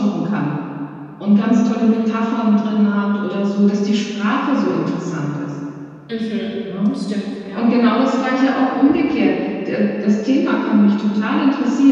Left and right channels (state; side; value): identical; both; correlation 1.00